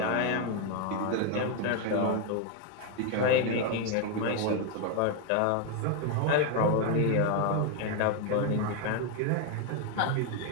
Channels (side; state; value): both; different; correlation 0.01